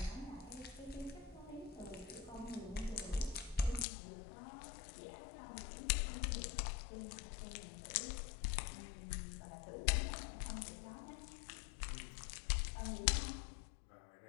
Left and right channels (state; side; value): drops out; right; at 3.9 s